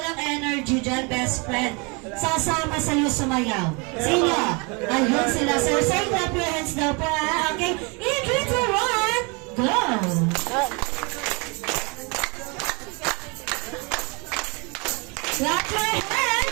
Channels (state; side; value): quieter; left; 30.9 dB